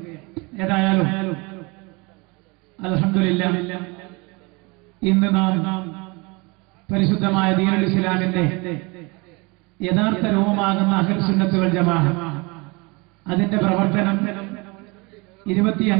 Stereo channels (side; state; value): left; quieter; 27.0 dB